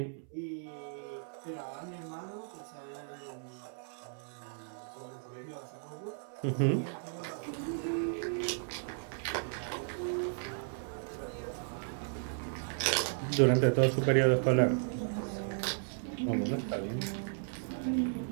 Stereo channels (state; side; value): silent; left; 54 dB below the other